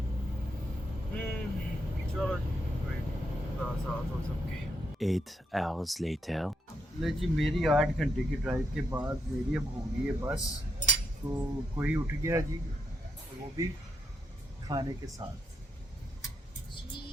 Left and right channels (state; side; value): normal; both; correlation 0.81